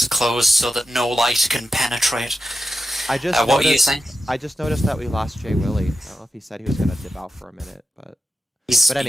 closed so that no light can penetrate. What are you saying? I just noticed that we lost Jay Willie. I don't know if he said he was gonna dip out for a minute, but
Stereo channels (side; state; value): both; normal; correlation 0.90